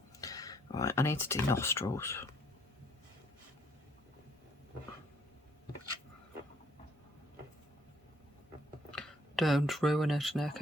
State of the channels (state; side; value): normal; both; correlation 0.65